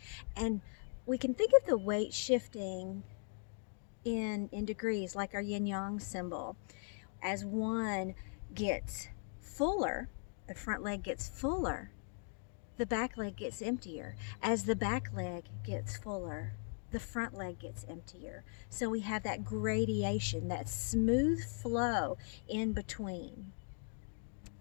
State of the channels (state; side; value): silent; right; 52 dB below the other